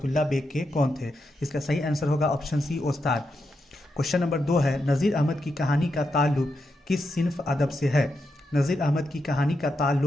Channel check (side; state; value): both; normal; correlation 0.85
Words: बेग के कौन थे। इसका सही आंसर होगा ऑप्शन सी, उस्ताद। क्वेश्चन नंबर 2 है, नज़ीर अहमद की कहानी का ताल्लुक किस सिन्फ अदब से है। नज़ीर अहमद की कहानी का